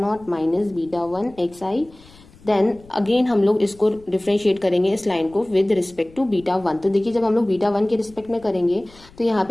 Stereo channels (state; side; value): noise; left; rumble, 24 dB below the sound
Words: minus beta one x i. Then again हम लोग इसको डिफ्रेंशिएट करेंगे इस लाइन को with respect to beta one. तो देखिए जब हम लोग बीटा वन के रिस्पेक्ट में करेंगे तो यहाँ